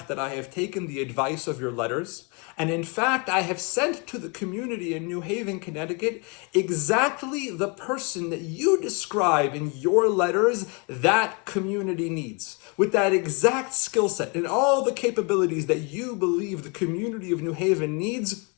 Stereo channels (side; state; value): right; quieter; 32.5 dB